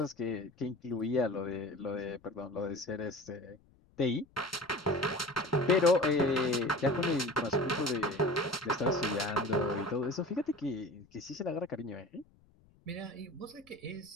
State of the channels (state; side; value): noise; left; rumble, 30 dB below the sound